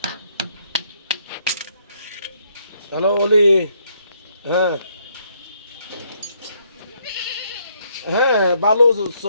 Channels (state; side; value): inverted; both; correlation -0.70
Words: হ্যালো অলি। হ্যাঁ হ্যাঁ, বালু